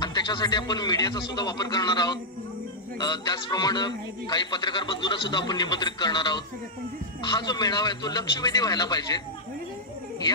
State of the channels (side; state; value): both; normal; correlation -0.05